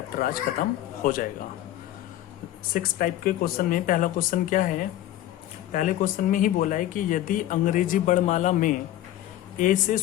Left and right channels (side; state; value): right; quieter; 13.6 dB